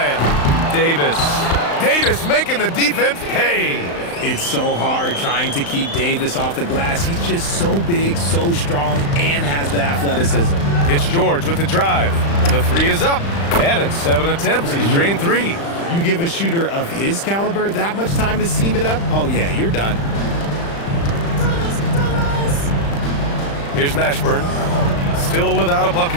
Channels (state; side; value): late; right; 35 ms